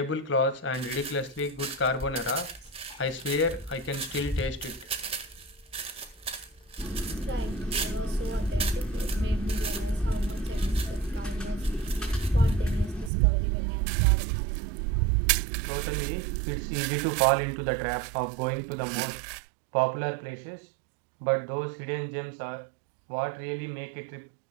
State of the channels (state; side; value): drops out; left; at 13.1 s